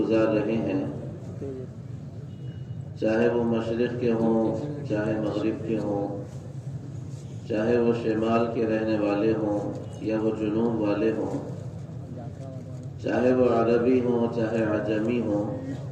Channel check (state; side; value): identical; both; correlation 1.00